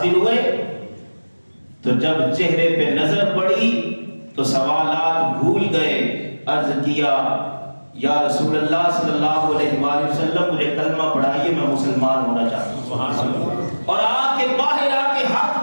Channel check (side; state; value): both; inverted; correlation -1.00